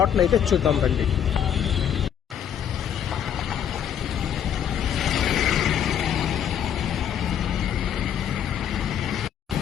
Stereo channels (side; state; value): right; quieter; 9.1 dB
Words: అయితే చూద్దాం రండి.